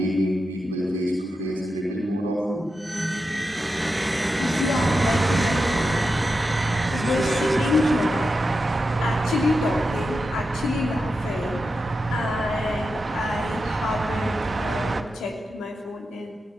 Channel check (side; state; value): both; normal; correlation 0.89